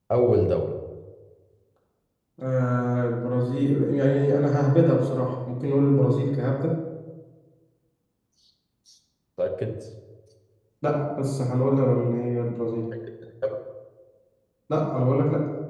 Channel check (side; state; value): both; identical; correlation 1.00